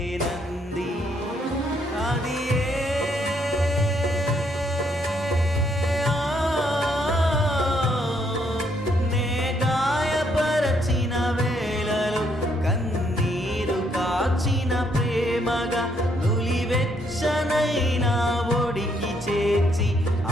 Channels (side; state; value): both; normal; correlation 0.72